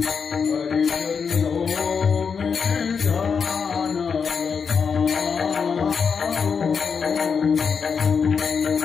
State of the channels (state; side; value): quieter; right; 6.0 dB